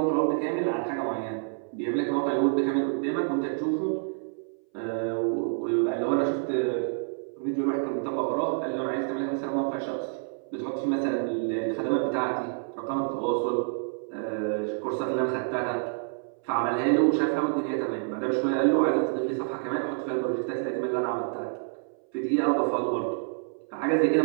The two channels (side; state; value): left; silent; 58 dB below the other